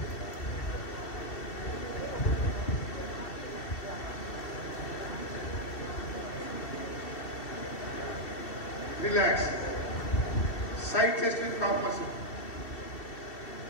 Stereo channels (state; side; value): late; right; 2.7 ms